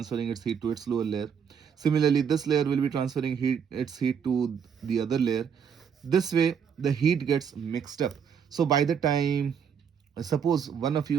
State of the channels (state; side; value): quieter; left; 7.3 dB